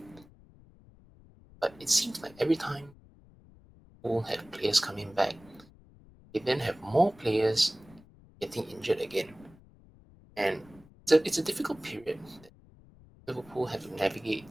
But it seems like every time we'll have players coming back, they then have more players getting injured again. And it's a difficult period that Liverpool have to navigate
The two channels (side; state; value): left; noise; rumble, 24 dB below the sound